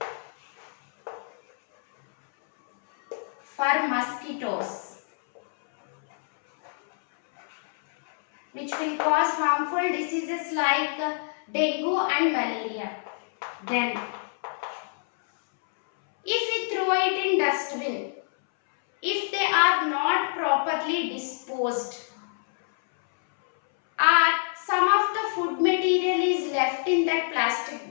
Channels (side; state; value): right; silent; 61 dB below the other